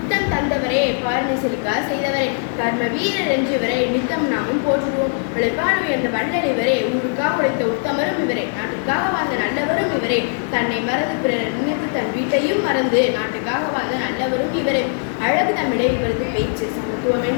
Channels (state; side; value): silent; right; 61 dB below the other